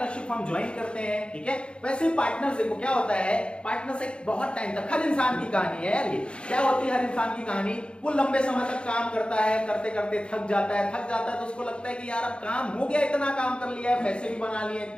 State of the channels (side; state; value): right; late; 0.056 ms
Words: हम ज्वाइन करते हैं। ठीक है, वैसे पार्टनर्स देखो क्या होता है, पार्टनर्स एक बहुत टाइम तक, हर इंसान की कहानी है यार ये, क्या होती है हर इंसान की कहानी, वो लंबे समय तक काम करता है, करते करते थक जाता है तो उसको लगता है कि यार अब काम हो गया, इतना काम कर लिया है, पैसे भी बना लिए